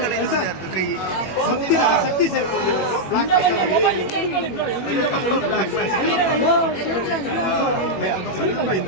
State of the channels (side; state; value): right; late; 21 ms